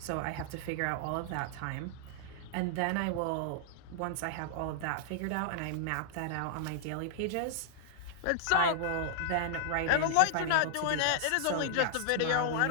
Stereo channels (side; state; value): both; different; correlation -0.01